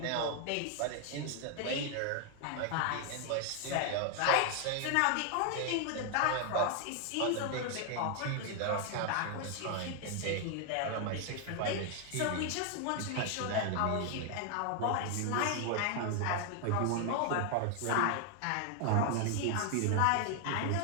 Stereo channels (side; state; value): both; different; correlation 0.00